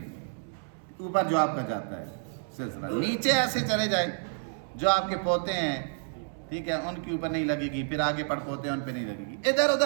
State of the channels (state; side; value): silent; left; 58 dB below the other